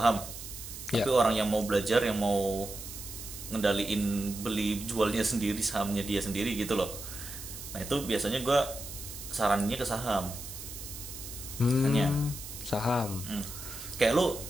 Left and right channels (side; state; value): right; noise; hiss, 11 dB below the sound